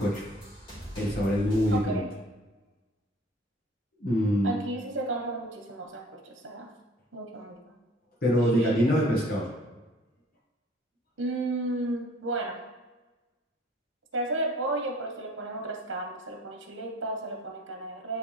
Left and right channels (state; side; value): normal; both; correlation 0.53